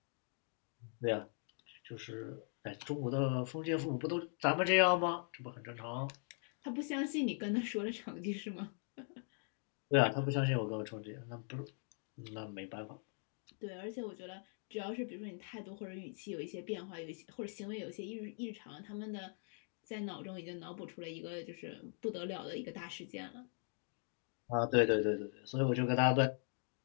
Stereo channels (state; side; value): silent; right; 51 dB below the other